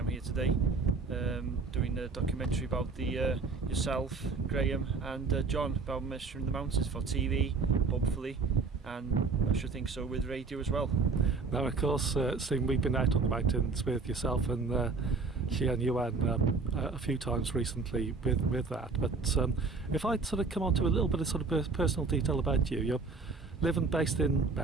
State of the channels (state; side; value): quieter; left; 4.1 dB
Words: here today, doing a documentary about yourself, Graham, and John, about measuring the mountains for TV, hopefully, and I should think so with radio as well. Now, of course, Stephen, we've been out on the mountains with yourself and Yuan a few times recently with that. But if I'd sort of come on to a little bit of sort of personal detail about you, you're living based in